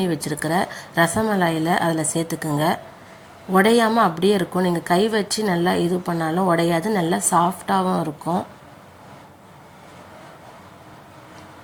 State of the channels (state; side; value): identical; both; correlation 1.00